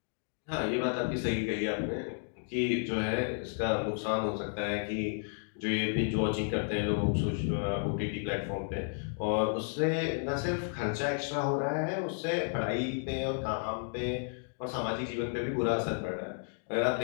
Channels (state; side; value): silent; right; 56 dB below the other